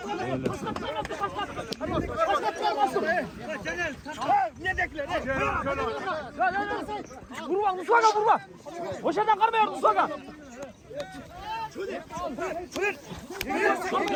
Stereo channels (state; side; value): identical; both; correlation 1.00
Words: Ne dekler? Vurma Musaka vurma. Boşadan karmıyor Musaka.